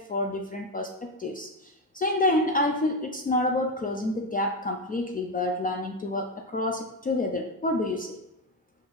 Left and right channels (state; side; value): normal; both; correlation 0.12